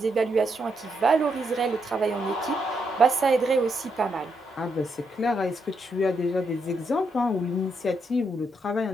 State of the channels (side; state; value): both; normal; correlation 0.79